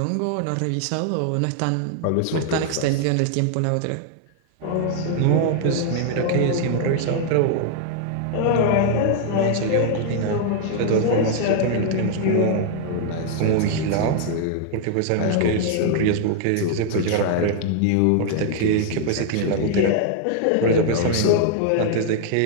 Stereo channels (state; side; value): different; both; correlation 0.00